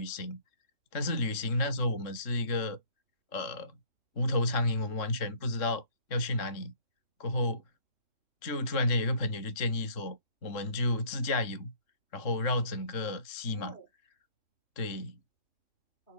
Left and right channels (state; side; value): late; right; 3.6 ms